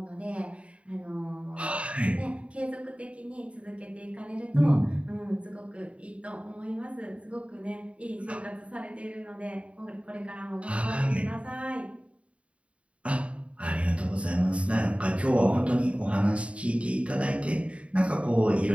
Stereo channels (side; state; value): left; late; 0.062 ms